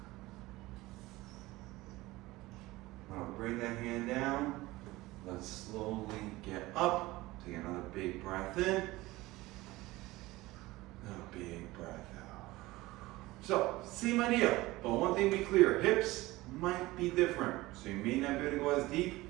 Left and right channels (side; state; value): left; quieter; 19.3 dB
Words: Now bring that hand down. Let's slowly get up. Take another big breath in. A big breath out. So, same idea, but one thing be clear, hips might be different. So you may not be able to go as deep,